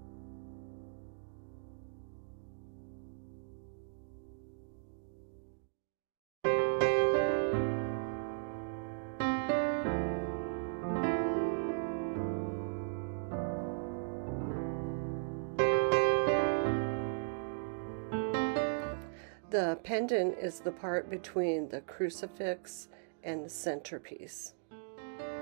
The pendant is the part between the crucifix and the centerpiece.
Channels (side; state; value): left; silent; digital silence